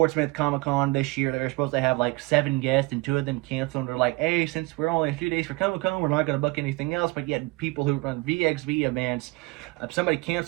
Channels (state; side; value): quieter; left; 22.9 dB